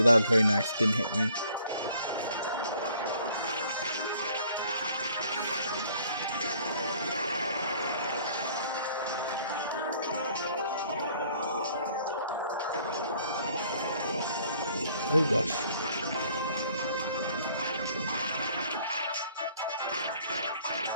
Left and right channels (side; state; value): both; inverted; correlation -0.59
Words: that was very nice. Didn't hit me. Oh gosh.